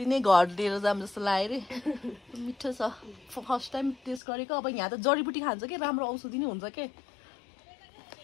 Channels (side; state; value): right; drops out; at 4.2 s